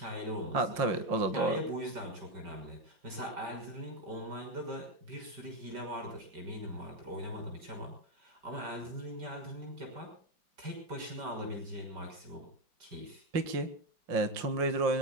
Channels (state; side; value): late; left; 5.1 ms